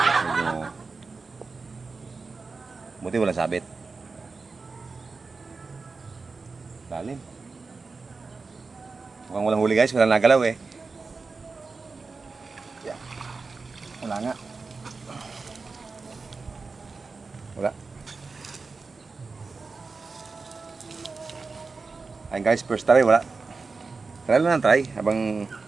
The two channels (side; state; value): left; quieter; 4.2 dB